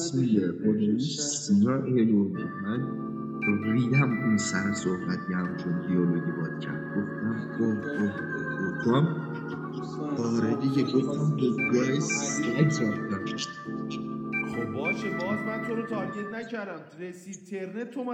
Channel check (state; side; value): identical; both; correlation 1.00